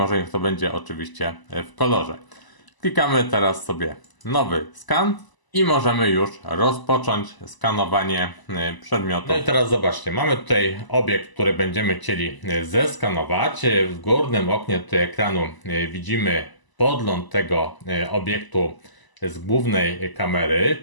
niech to będzie oczywiście w kolorze. Klikamy teraz sobie nowy skan i możemy już rozpocząć skanowanie przedmiotu. No i teraz zobaczcie, mamy tutaj obiekt, który będziemy chcieli zeskanować. W górnym oknie tutaj ekranu widzimy podgląd tego obiektu z głównej kamery,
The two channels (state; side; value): late; right; 1.0 ms